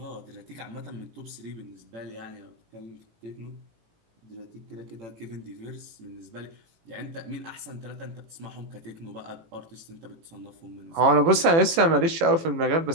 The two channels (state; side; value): late; left; 18 ms